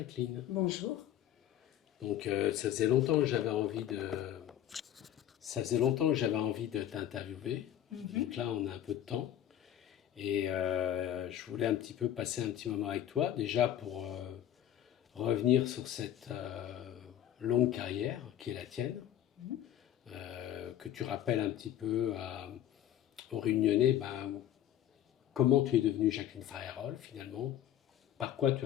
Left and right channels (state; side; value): quieter; right; 11.5 dB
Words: Bonjour. Donc ça faisait longtemps que j'avais envie de t'interviewer. Donc là on a un peu de temps et je voulais un petit peu passer un petit moment avec toi déjà pour revenir sur cette longue carrière qui est la tienne, que tu rappelles un petit peu aux Réunionnais, comment tu es devenue Jacqueline Farerol finalement, par quoi tu